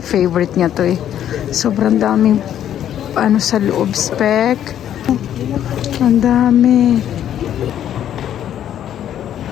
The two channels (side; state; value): right; quieter; 10.6 dB